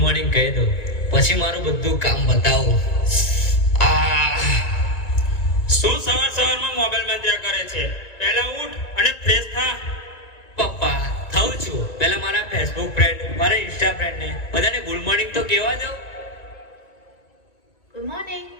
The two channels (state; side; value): late; right; 2.0 ms